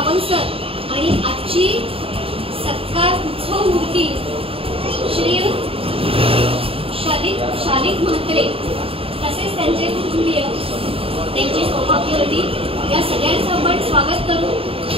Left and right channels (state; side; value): late; left; 0.27 ms